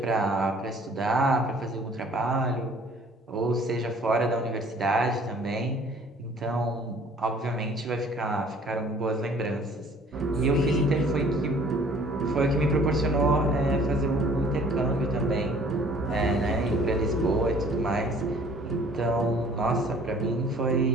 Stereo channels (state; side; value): normal; both; correlation 0.54